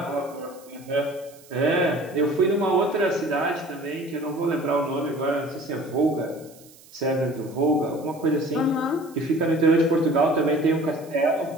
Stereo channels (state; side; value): noise; right; hiss, 24 dB below the sound